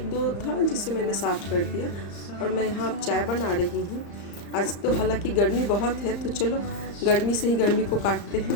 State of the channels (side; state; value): right; late; 35 ms